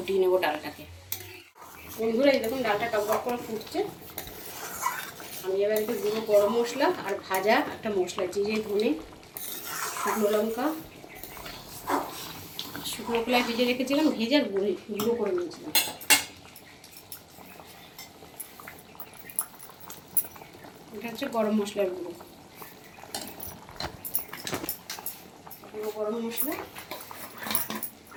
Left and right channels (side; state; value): both; identical; correlation 1.00